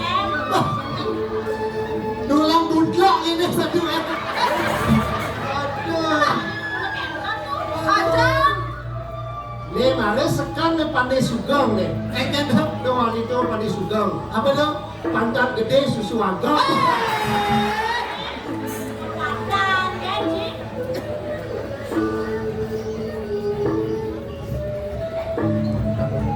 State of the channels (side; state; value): both; identical; correlation 1.00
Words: Tulang budlok ini satu Aduh. Ajang. Nih malah sekan nih pandai sugeng nih. Kan doang itu pandai sugeng. Apa dong? Pantat gede susu agak. Pandan, gaji.